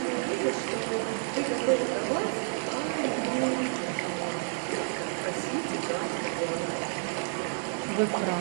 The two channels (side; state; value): left; silent; 56 dB below the other